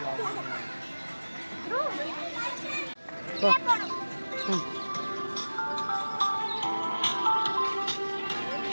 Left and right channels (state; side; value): inverted; both; correlation -1.00